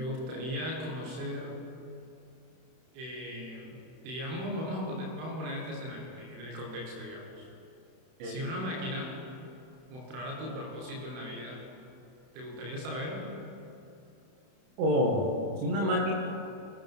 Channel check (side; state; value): left; late; 31 ms